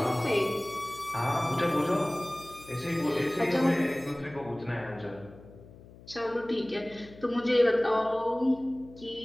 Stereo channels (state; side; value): noise; left; hum, 20 dB below the sound